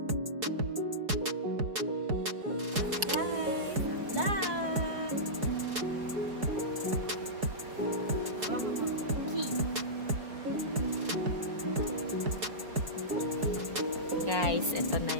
Guys, ito na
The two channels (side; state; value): left; late; 4.7 ms